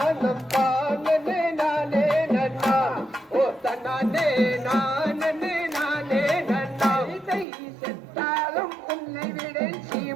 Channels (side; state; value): left; drops out; at 7.5 s